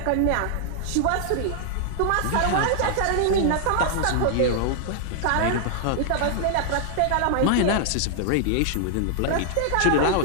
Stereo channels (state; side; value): different; both; correlation 0.00